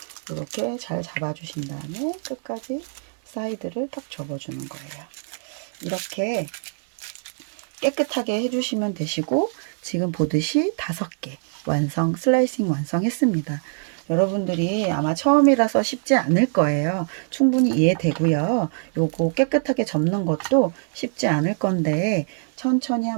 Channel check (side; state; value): left; silent; 63 dB below the other